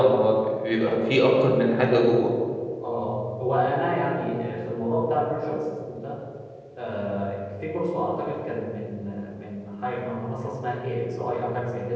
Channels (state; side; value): identical; both; correlation 1.00